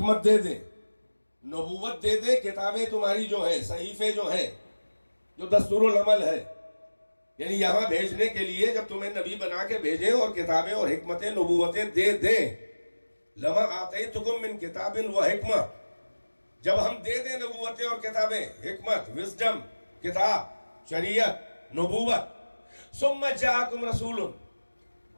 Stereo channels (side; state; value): both; inverted; correlation -1.00